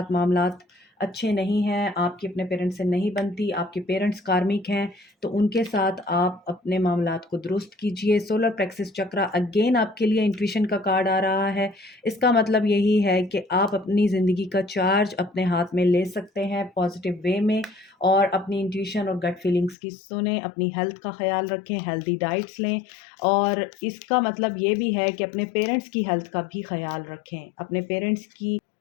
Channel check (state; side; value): drops out; right; at 19.8 s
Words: मामलात अच्छे नहीं हैं, आपकी अपने पेरेंट्स से नहीं बनती, आपके पेरेंट्स कार्मिक हैं, तो उनके साथ आप अपने मामलात को दुरुस्त कीजिए। सोलर प्लेक्सस चक्रा अगेन आपके लिए इंट्यूशन का कार्ड आ रहा है। इसका मतलब यही है कि आप अपनी ज़िंदगी का चार्ज अपने हाथ में ले सकते हैं पॉजिटिव वे में, और अपनी इंट्यूशन और गट फीलिंग्स की सुने, अपनी हेल्थ का ख्याल रखें, हेल्दी डाइट्स लें, और इसका मतलब ये भी है कि अपने पेरेंट्स की हेल्थ का भी ख्याल रखें। अपने पेरेंट्स की